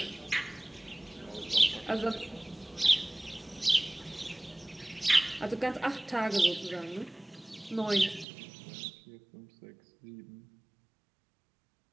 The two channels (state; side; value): drops out; left; at 8.2 s